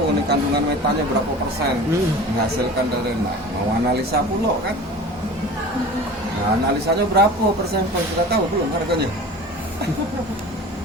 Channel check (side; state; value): both; normal; correlation 0.39